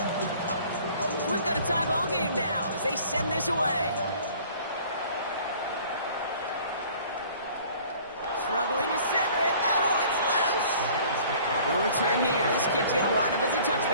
We've got a tie ball game now as they send this away. Struggling to center it. Oh, it's loose. No return here. This kick's going to wind up as a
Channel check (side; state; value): both; inverted; correlation -0.51